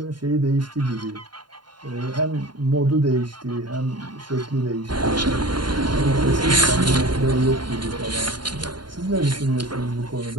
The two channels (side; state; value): left; late; 0.71 ms